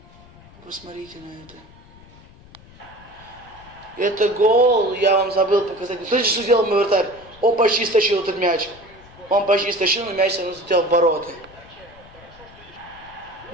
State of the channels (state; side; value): noise; left; rumble, 23 dB below the sound